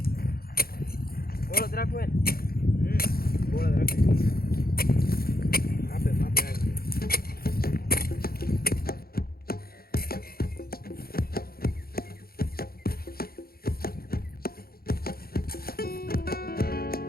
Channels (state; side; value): late; right; 0.44 ms